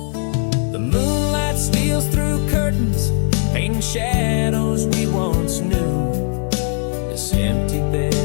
The moonlight steals through curtains, painting shadows we once knew. This empty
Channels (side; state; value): right; silent; 59 dB below the other